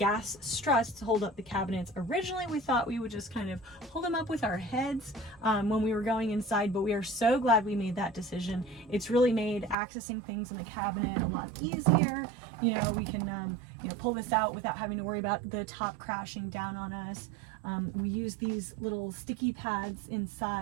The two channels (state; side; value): drops out; left; at 9.8 s